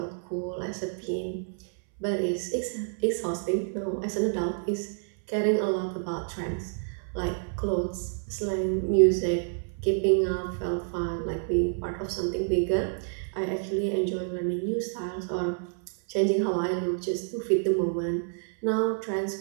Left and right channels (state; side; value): silent; left; 59 dB below the other